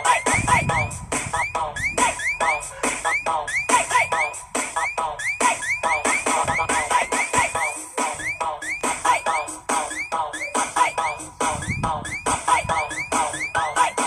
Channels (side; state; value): both; identical; correlation 1.00